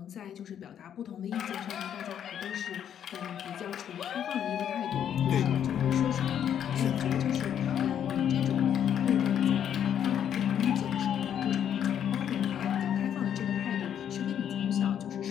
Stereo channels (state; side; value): quieter; right; 9.3 dB